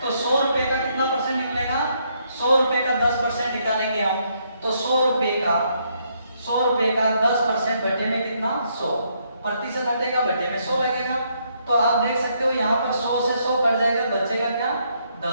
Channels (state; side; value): inverted; both; correlation -0.73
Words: तो 100 रुपए का कितना परसेंट निकलेगा? 100 रुपए का 10% निकालेंगे हम तो 100 रुपए का 10% बटे में कितना? 100। प्रतिशत हटेगा, बटे में 100 लगेगा। तो आप देख सकते हो यहाँ पर 100 से 100 कट जाएगा, बचेगा क्या?